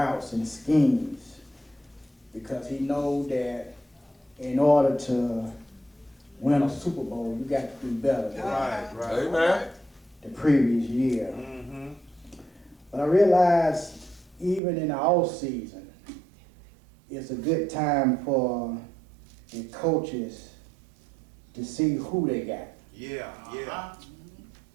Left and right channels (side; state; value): left; drops out; at 14.6 s